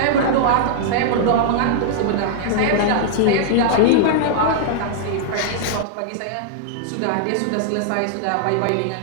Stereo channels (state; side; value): different; both; correlation -0.01